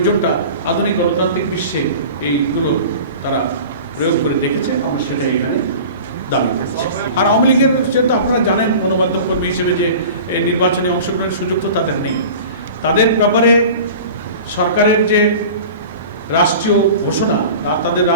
আধুনিক গণতান্ত্রিক বিশ্বে এইগুলো তারা প্রয়োগ করে দেখেছে। আমরা সেটা এখানে দাবি করছি। আর আওয়ামী লীগের যেহেতু আপনারা জানেন গণমাধ্যম কর্মী হিসেবে যে এই নির্বাচনে অংশগ্রহণের সুযোগ তো তাদের নেই। তাদের ব্যাপারে সরকারের যে রাষ্ট্রীয় ঘোষণা তাদের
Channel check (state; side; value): inverted; both; correlation -0.38